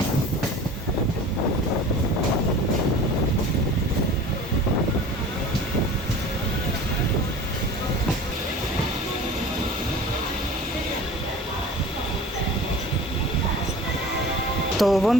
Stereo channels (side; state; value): both; normal; correlation 0.40